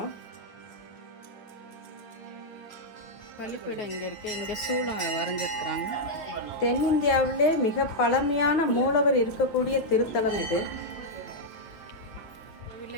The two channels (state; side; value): late; right; 9.4 ms